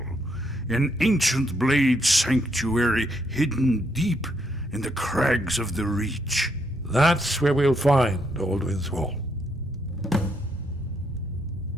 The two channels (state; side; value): normal; both; correlation 0.75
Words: an ancient Blade sanctuary hidden deep in the crags of the Reach. That's where we'll find Alduin's Wall.